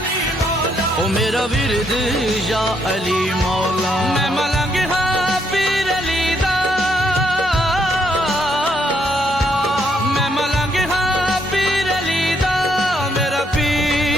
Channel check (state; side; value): normal; both; correlation 0.73